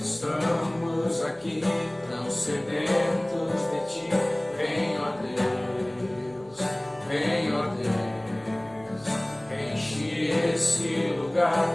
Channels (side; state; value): left; noise; hum, 30 dB below the sound